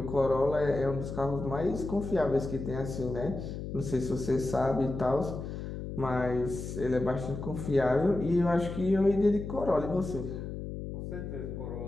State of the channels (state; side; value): noise; left; hum, 7 dB below the sound